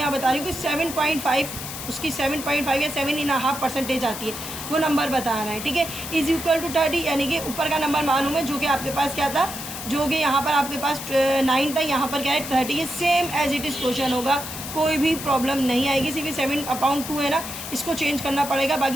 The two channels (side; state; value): left; noise; hiss, 8 dB below the sound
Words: बता रही हूँ कि 7.5 उसकी 7.5 या 7.5% आती है, वो नंबर बताना है, ठीक है। = 30, यानी कि ऊपर का नंबर मालूम है, जो कि आपके पास क्या था, जो कि यहाँ पर आपके पास 9 था, यहाँ पर क्या है 30 है। Same as it is question होगा, कोई भी प्रॉब्लम नहीं आएगी। सिर्फ 7/2 है ना, इसको चेंज करना पड़ेगा,